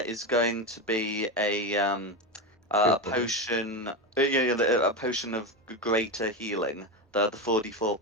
is going to be a potion, a potion of greater healing, the 44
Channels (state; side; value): normal; both; correlation 0.16